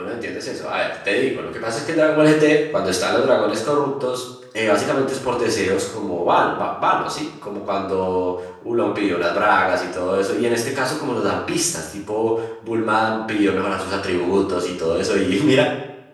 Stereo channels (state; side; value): identical; both; correlation 1.00